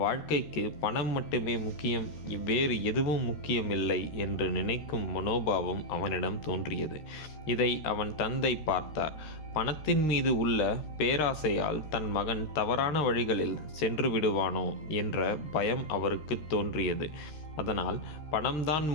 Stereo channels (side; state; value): right; late; 13 ms